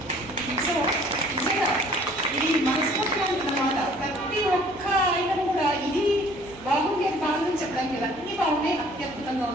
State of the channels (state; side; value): noise; right; hum, 20 dB below the sound